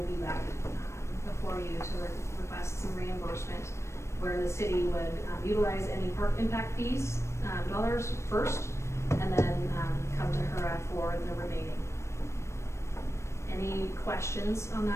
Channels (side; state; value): right; late; 0.13 ms